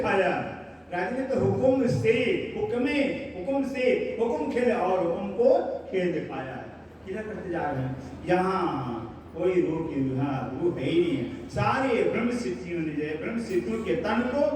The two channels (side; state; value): both; identical; correlation 1.00